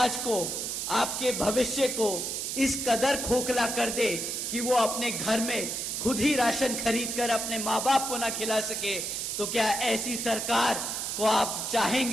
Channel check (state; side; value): noise; right; hiss, 3 dB below the sound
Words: को, आपके भविष्य को इस कदर खोखला कर दे कि वो अपने घर में खुद ही राशन खरीदकर अपने माँ बाप को ना खिला सके, तो क्या ऐसी सरकार को आप